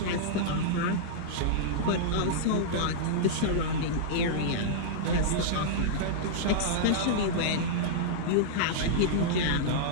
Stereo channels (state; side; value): different; both; correlation -0.03